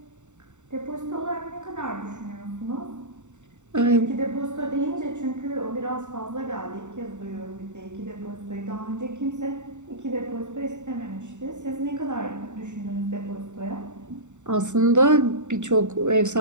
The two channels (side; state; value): left; late; 0.84 ms